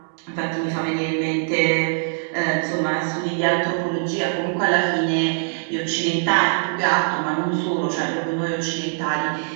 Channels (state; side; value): silent; left; digital silence